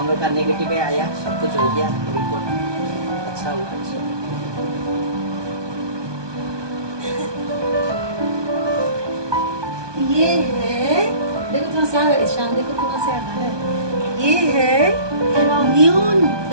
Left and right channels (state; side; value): late; left; 1.2 ms